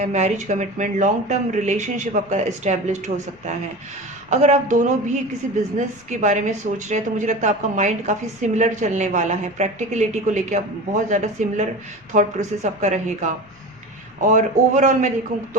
marriage commitment, long term relationship आपका इस्टेब्लिश्ड हो सकता है। अगर आप दोनों भी किसी बिजनेस के बारे में सोच रहे हैं तो मुझे लगता है आपका माइंड काफ़ी सिमिलर चलने वाला है। प्रैक्टिकलिटी को लेके आप बहुत ज़्यादा सिमिलर थॉट प्रोसेस आपका रहेगा। और ओवरऑल मैं देखूँ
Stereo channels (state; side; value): noise; left; rumble, 30 dB below the sound